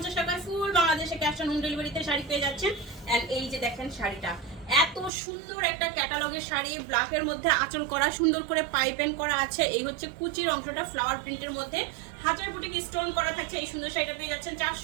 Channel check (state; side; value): drops out; left; at 5.1 s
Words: টাকায়। ফুল বাংলাদেশে ক্যাশ অন হোম ডেলিভারিতে শাড়ি পেয়ে যাচ্ছেন। এন্ড এই যে দেখেন শাড়িটা, এত সুন্দর একটা ক্যাটালগের শাড়ি, ব্ল্যাকের মধ্যে আঁচল করা, সুন্দর করে পাইপেন করা আছে। এই হচ্ছে কুচির অংশটা ফ্লাওয়ার প্রিন্টের মধ্যে হাজার বুটিক স্টোন করা থাকছে। এই সুন্দর শাড়িটা পেয়ে যাচ্ছেন